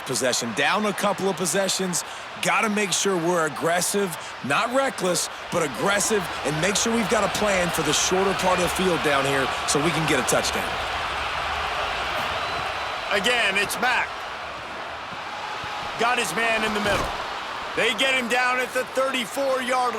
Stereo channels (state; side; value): identical; both; correlation 1.00